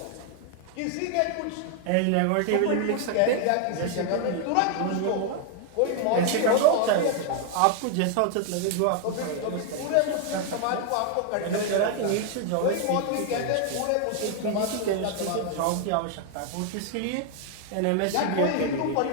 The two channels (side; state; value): both; different; correlation 0.00